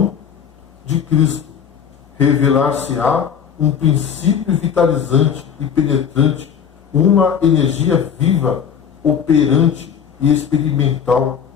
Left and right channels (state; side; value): quieter; right; 7.7 dB